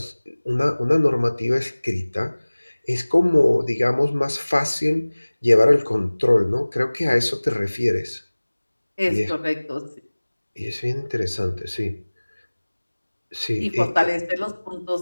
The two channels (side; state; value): both; inverted; correlation -1.00